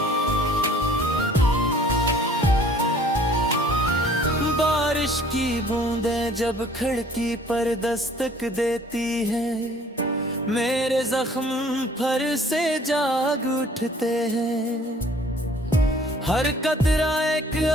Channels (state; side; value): normal; both; correlation 0.55